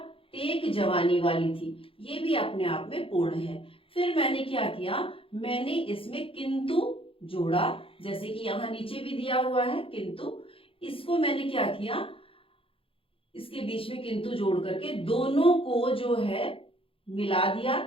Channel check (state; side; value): late; right; 0.27 ms